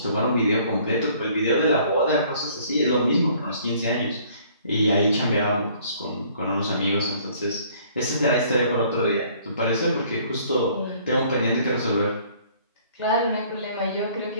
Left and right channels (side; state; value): both; inverted; correlation -0.58